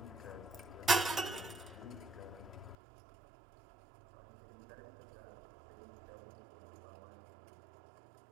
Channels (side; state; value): left; drops out; at 2.8 s